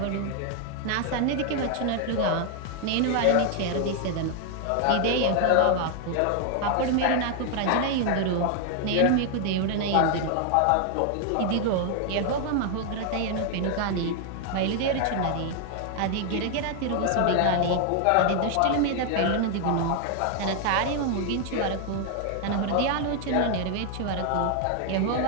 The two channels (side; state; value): both; different; correlation 0.00